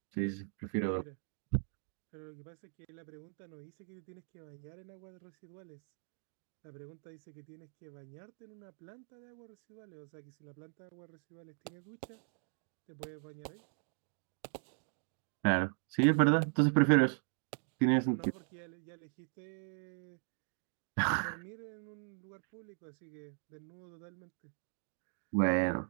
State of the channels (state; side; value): silent; left; 52 dB below the other